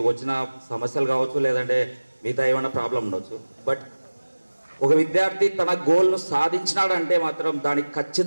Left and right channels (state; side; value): inverted; both; correlation -1.00